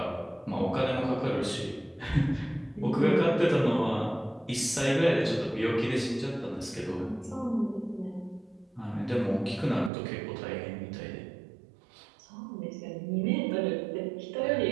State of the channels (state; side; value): drops out; left; at 9.9 s